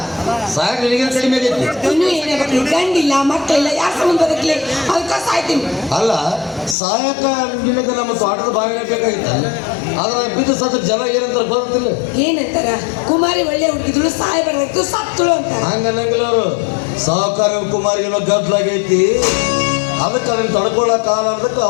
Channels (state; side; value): drops out; right; at 6.8 s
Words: ಸಾಯಕ್ ನಿನಗೆ ಕಡಿಮೆ ಆಗೈತಿ. ಇನ್ನೂ ಏನೇ ಬರಲಿ, ಗಂಡಿಲ್ಲ ಮಕ್ಕಳಿಲ್ಲ, ಯಾಕೆ ಸಂಬಂಧ ಬದುಕಲಿ? ಅದಕ್ಕೆ ಸಾಯ್ತೀನಿ. ಅಲ್ಲ ಸಾಯಕ ನಿನಗೆ ನಮ್ಮ ತೋಟದ ಬಾವಿನ ಬೇಕಾಗಿತ್ತ. ಆದ್ರೆ ಬಿದ್ದು ಸತ್ತ ಜನ ಏನಂತಾರೆ ಗೊತ್ತಿಲ್ಲ. ಏನಂತಾರ? ಕುಮಾರಿ ಒಳ್ಳೆ ಹುಡುಗಿದ್ರು ಸಾಯಬಾರ್ದಾಯ್ತು ಸತ್ತಳು ಅಂತಾರ. ಹಂಗನ್ನಂಗಿಲ್ಲ ಅವರು. ಸಾಹುಕಾರ ಕುಮಾರಿಗೆಲ್ಲ ಗದ್ದಲಾಗೈತಿ, ಅದಕ್ಕೆ ಅದನ್ನ ತಡ್ಕೊಳ್ಳೋ ಕಾಲ ಅದಕ್ಕೆ